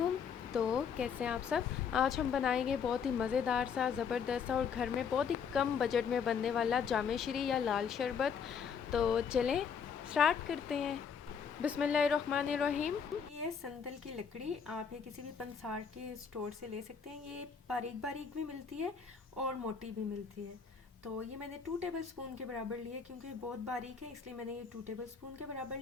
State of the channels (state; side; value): quieter; right; 6.7 dB